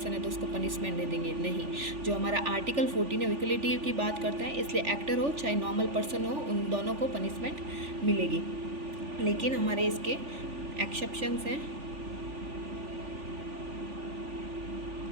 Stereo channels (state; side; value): late; left; 3.4 ms